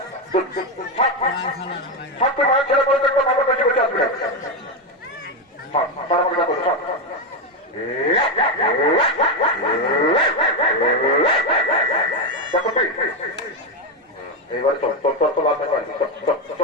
এবার চল চল চল চল আসবে,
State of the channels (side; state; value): both; normal; correlation 0.08